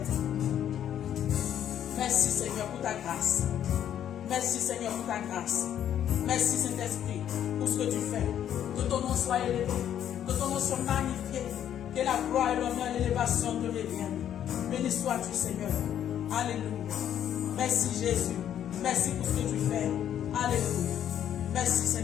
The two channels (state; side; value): quieter; right; 10.2 dB